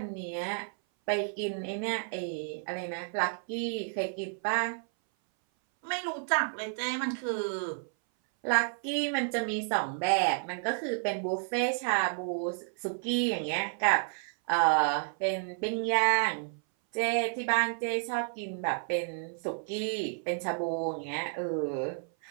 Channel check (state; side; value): silent; left; 57 dB below the other